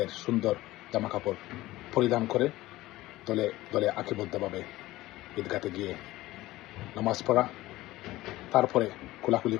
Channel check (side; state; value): right; quieter; 17.5 dB